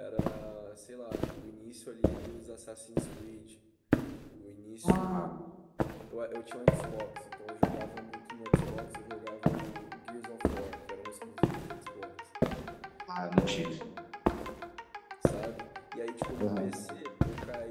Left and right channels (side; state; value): both; identical; correlation 1.00